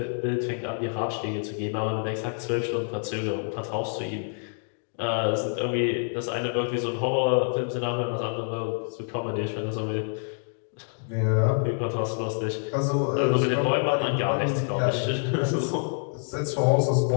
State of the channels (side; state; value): right; silent; digital silence